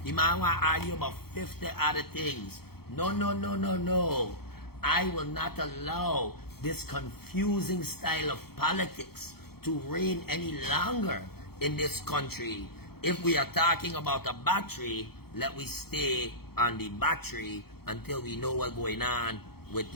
the man want to argue about 50 other things. No, no, no, no, no. I will not allow this confusing style of politics to reign any longer in this country. If we are talking about a battery, let we stay on the battery until we know what's going on with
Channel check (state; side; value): late; right; 0.96 ms